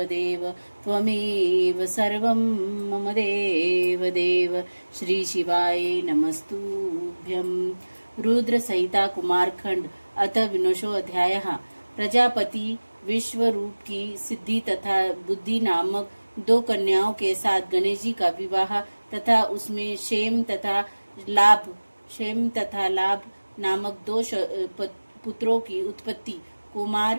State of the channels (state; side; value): inverted; both; correlation -1.00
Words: देव त्वमेव सर्वं मम देव देव। श्री शिवाय नमस्तुभ्यं। रुद्र संहिता कुमारखंड अथ विनोशो अध्याय। प्रजापति विश्वरूप की सिद्धि तथा बुद्धि नामक दो कन्याओं के साथ गणेश जी का विवाह तथा उसमें क्षेम तथा लाभ नामक दो पुत्रों की उत्पत्ति।